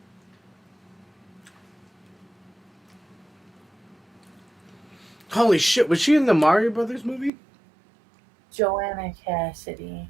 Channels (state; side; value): drops out; left; at 7.3 s